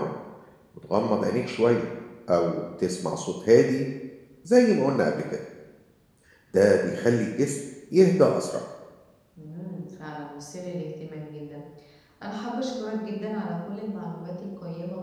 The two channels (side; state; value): both; identical; correlation 1.00